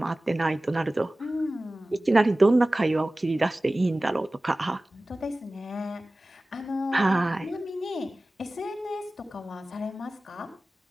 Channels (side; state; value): both; normal; correlation 0.97